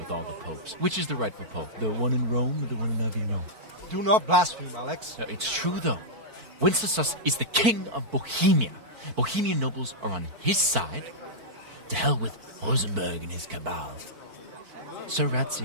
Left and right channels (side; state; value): left; late; 4.5 ms